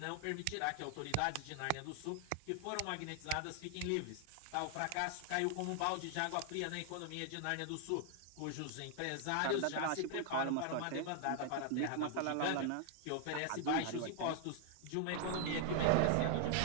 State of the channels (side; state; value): both; different; correlation 0.00